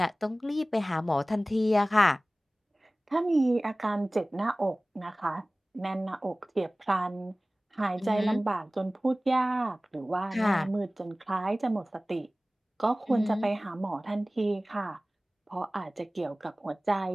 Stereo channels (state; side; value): normal; both; correlation 0.98